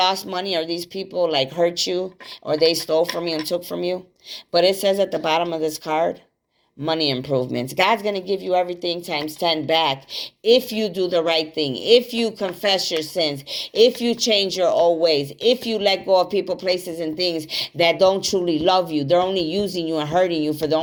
money or these people like hurt you or they stole from you and took from you. But it says at the bottom of this card, money improvements. God's going to give you everything times 10 back if you do the right thing, if you confess your sins, if you change your old ways, if you let go of people, places, and things that don't truly love you. They're only using you and hurting you for their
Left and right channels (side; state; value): both; identical; correlation 1.00